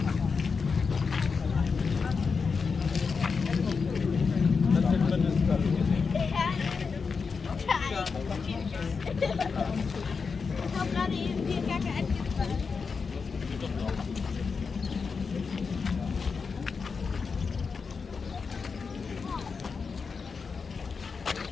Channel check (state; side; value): quieter; right; 5.2 dB